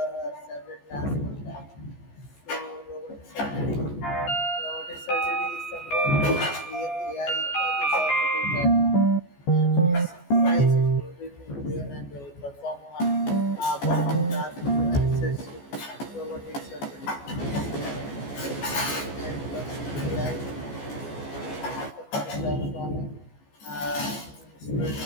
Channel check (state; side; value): late; right; 14 ms